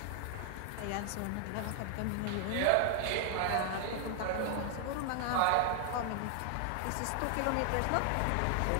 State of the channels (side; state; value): both; different; correlation 0.00